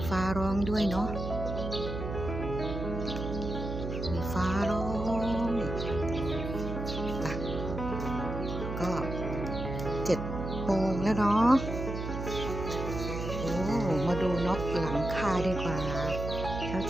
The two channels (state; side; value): noise; right; hum, 5 dB below the sound